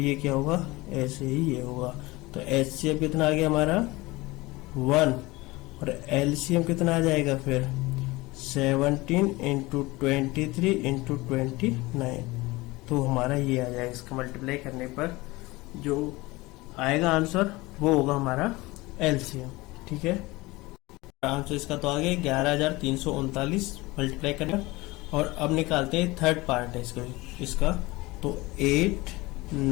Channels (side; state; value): right; quieter; 21.4 dB